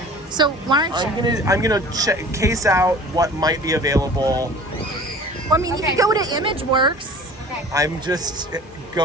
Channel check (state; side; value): normal; both; correlation 0.44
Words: So why aren't you? I'm gonna case out what might be available. Well, I mean, you could go to ImageWorks. Okay. I'm just